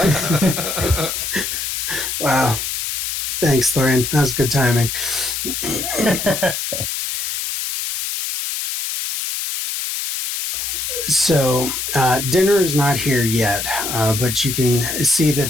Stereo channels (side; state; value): left; noise; hiss, 3 dB below the sound